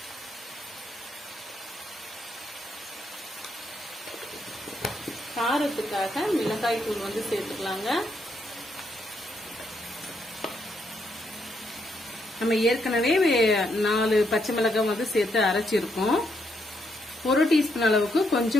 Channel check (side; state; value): both; normal; correlation 0.77